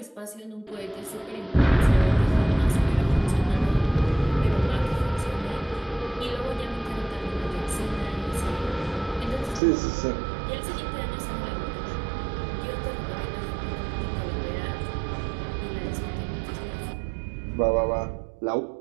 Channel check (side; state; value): left; drops out; at 9.6 s